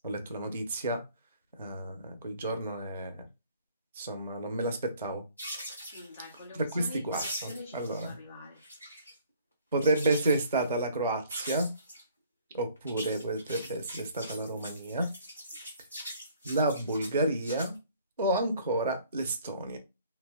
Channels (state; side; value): inverted; both; correlation -0.57